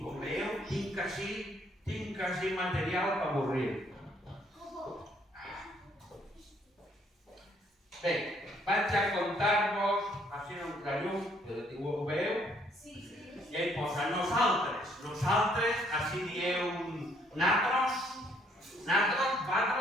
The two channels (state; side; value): normal; both; correlation 0.66